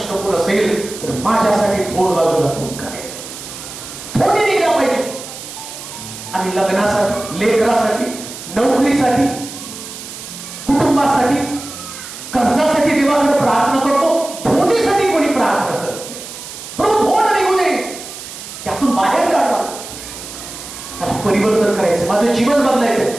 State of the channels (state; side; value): noise; right; hiss, 12 dB below the sound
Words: कोण असेल तर माझ्यासाठी थोड बाजूला कोण काढेल. थोडी निघला पाहिजे. आणि लग्नासाठी, लेकरासाठी, नोकरीसाठी, कुटुंबासाठी, कर्जासाठी देवाकडे प्रार्थना करतो. धोंडीसाठी कोणी प्रार्थना करत नाही. प्रभू धोंड निघू दे, त्यातून बाहेर काढवा. मला परिवर्तन करायचं, माझं जीवन बदलायचं,